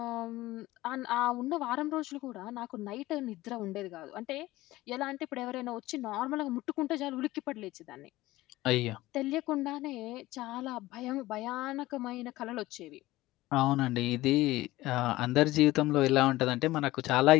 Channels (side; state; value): right; quieter; 17.8 dB